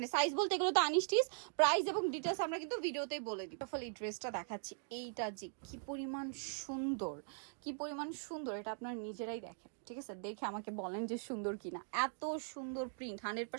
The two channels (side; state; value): left; silent; digital silence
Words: সাইজ বলতে এগুলো তো আনস্টিচ, প্রাইস এবং ডিটেলস আমরা কিন্তু ভিডিওতে বলে দিই। ফলে এই ড্রেসটা দেখাচ্ছি, এইটা যে কি পরিমাণ সুন্দর, কি পরিমাণ সুন্দর, এটা আপনারা নিজেরাই দেখেন, ঠিক আছে? দেখে আমাকে বলেন যে সুন্দর কিনা। এত সুন্দর প্রিন্ট,